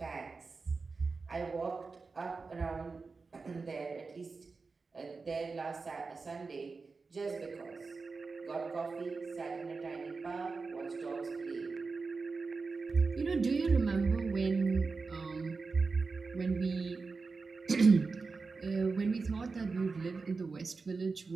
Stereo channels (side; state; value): left; quieter; 4.3 dB